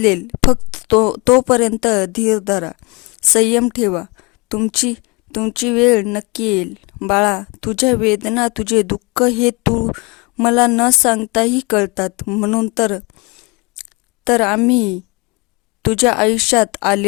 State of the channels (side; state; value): right; quieter; 28.1 dB